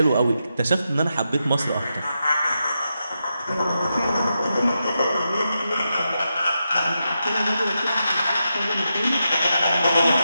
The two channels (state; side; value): inverted; both; correlation -0.86